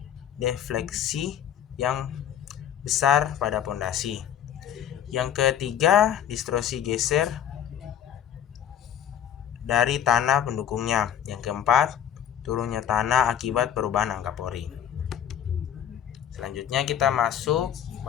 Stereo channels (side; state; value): right; quieter; 9.8 dB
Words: defleksi yang besar pada pondasi. Yang ketiga, distorsi geser dari tanah pendukungnya. Yang keempat, turunnya tanah akibat perubahan angka pori. Selanjutnya kita masuk